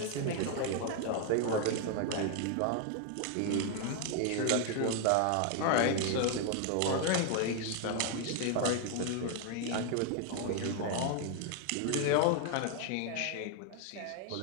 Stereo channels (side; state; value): both; different; correlation 0.01